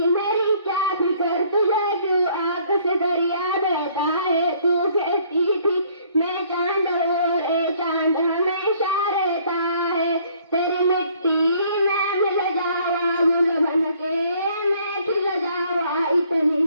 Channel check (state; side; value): inverted; both; correlation -0.61